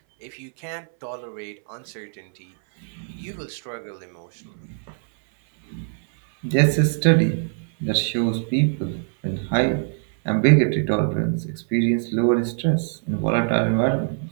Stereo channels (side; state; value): left; silent; 61 dB below the other